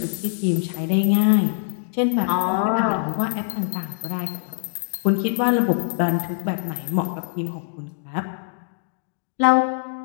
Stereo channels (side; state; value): right; silent; digital silence